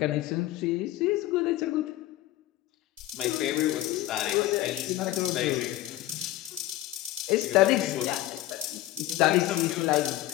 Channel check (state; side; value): quieter; right; 15.8 dB